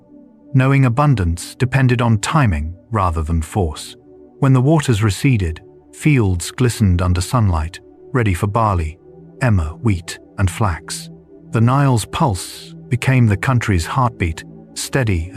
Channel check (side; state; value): both; identical; correlation 1.00